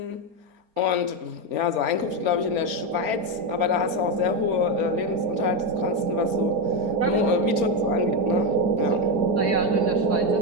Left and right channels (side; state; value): left; late; 4.3 ms